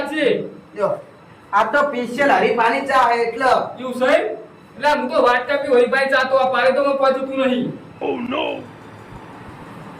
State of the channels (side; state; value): both; identical; correlation 1.00